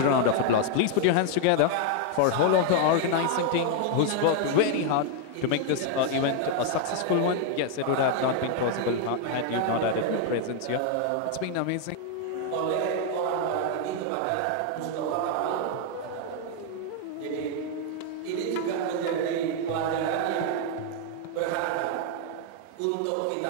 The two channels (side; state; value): both; different; correlation 0.00